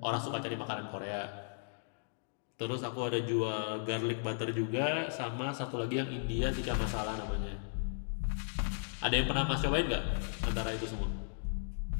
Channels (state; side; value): silent; right; digital silence